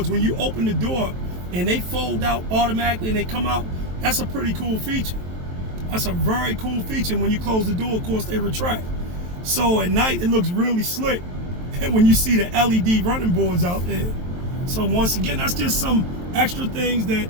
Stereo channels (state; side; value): late; left; 23 ms